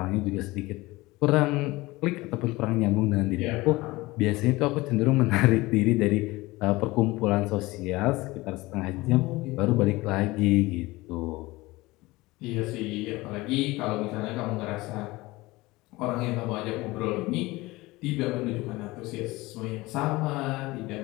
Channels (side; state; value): right; quieter; 20.7 dB